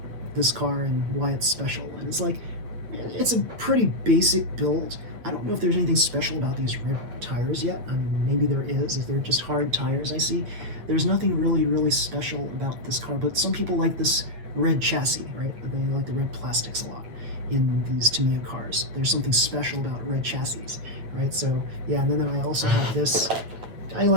this car and why it's special. And it's like, it's a pretty basic build. I don't know if there's anything special about these red tires yet. I mean, maybe there is, if they're just hard tires I see. There's nothing really special about this car, but some people like this red chassis, right? They like the red plastics a lot in these Tamiya cars. There's something special about red chassis, right? So yeah, and then I also have this. I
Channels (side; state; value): left; late; 8.7 ms